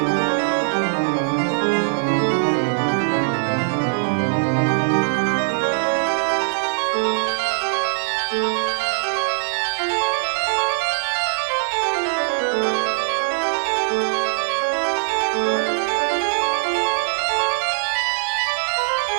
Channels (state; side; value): silent; left; 65 dB below the other